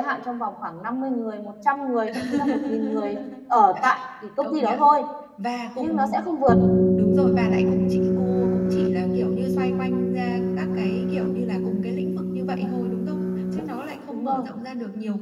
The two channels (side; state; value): both; identical; correlation 1.00